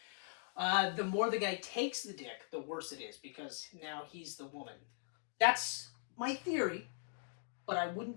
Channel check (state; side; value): silent; right; digital silence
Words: The more the guy takes the dick, the worse it is, because now he's the woman. That's my theory, but I wouldn't